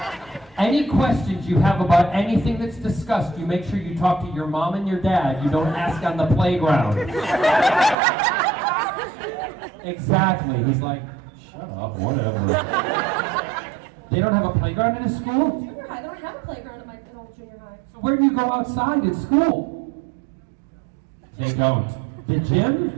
Any questions you have about anything that's discussed, you make sure you talk to your mom and your dad. You don't ask on the playground. Exactly. He's like, shut up, whatever. They don't have a playground in his school? Junior high. They don't have a playground in old junior high. So where do you go outside at school? They don't. The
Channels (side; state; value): left; drops out; at 8.0 s